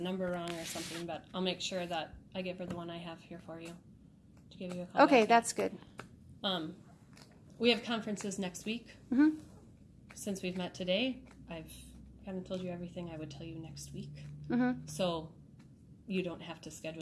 wrong or something, but I'll make sure that I give her the one I have here for you to give you a call. Okay, that's good. We have conferences next week. Mm-hmm. Since we've met today, I've kind of told you everything I would tell you next week. Mm-hmm. So you don't have to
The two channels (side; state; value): both; identical; correlation 1.00